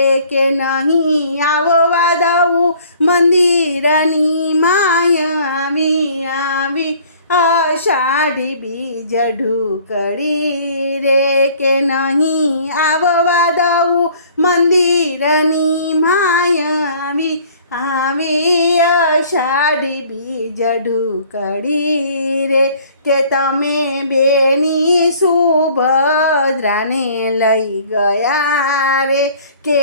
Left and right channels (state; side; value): inverted; both; correlation -0.54